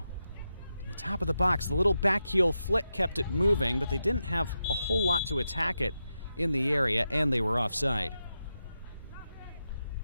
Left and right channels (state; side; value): inverted; both; correlation -0.88